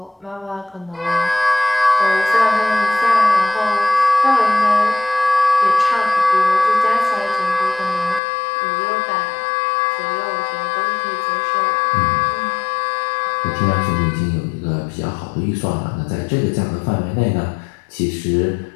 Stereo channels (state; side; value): drops out; right; at 8.2 s